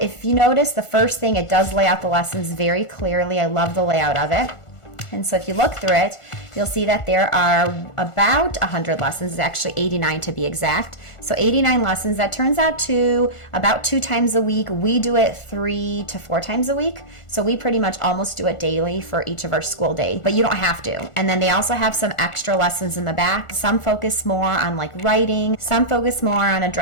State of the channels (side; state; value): right; late; 1.4 ms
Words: if you notice, the first thing, it does lay out the lessons very clearly. I love the layout of it. And so if you look through it, you'll see that there are about 100 lessons, actually 89 to be exact. So 89 lessons, that turns out to about 2 times a week. We do it 3 to 4 times a week. So we pretty much almost do it daily for each of our school days, but you don't have to. And then they also have some extra lessons in the back. Some focus more on like writing, some focus more on